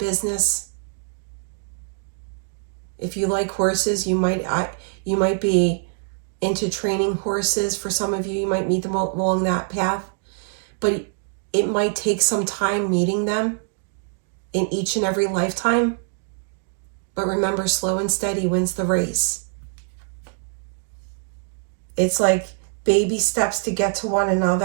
If you like horses, you might be into training horses. For some of you, you might meet them along that path. But it might take some time meeting them in each and every lifetime. But remember, slow and steady wins the race. It's like baby steps to get to one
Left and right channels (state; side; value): silent; left; 60 dB below the other